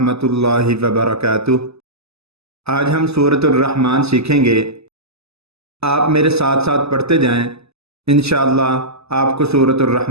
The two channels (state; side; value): late; left; 0.79 ms